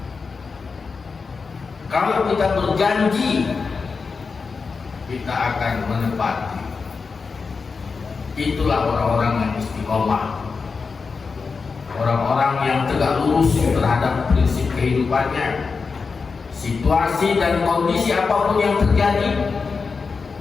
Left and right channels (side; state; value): right; quieter; 4.9 dB